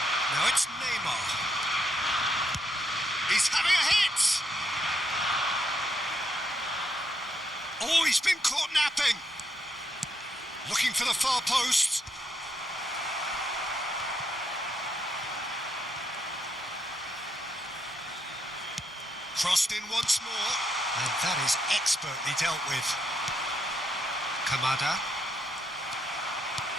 Now it's Neymar. He's having a hit! Oh, he's been caught napping. Looking for the far post. Crossed in once more. And that is expertly dealt with. Kamada.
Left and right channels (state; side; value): normal; both; correlation 0.78